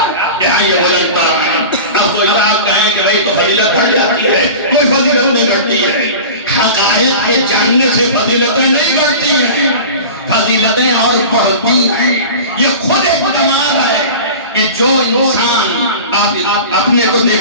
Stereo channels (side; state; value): both; inverted; correlation -0.34